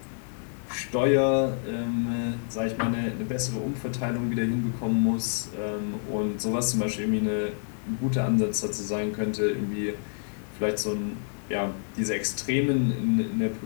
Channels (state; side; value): silent; right; digital silence